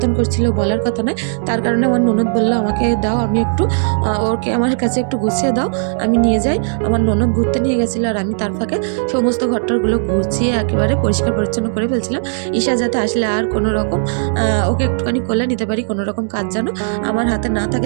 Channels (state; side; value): silent; left; digital silence